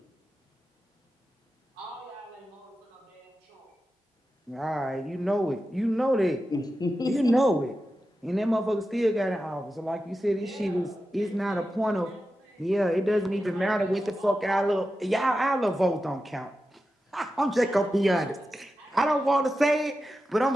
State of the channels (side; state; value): both; normal; correlation 0.91